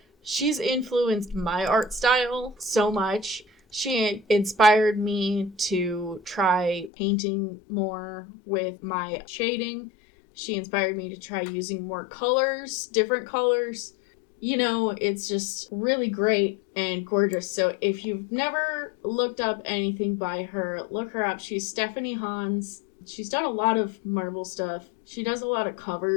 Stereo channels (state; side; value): drops out; right; at 6.9 s